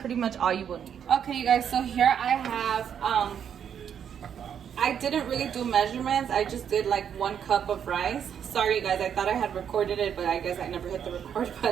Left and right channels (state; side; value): quieter; left; 8.4 dB